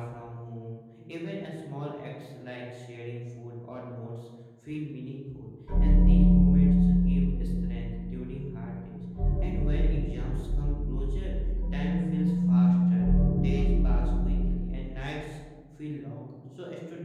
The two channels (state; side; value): identical; both; correlation 1.00